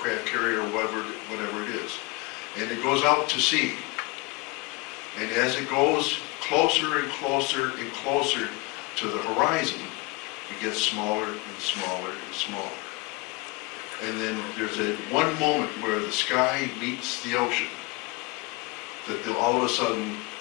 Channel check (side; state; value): right; quieter; 23.8 dB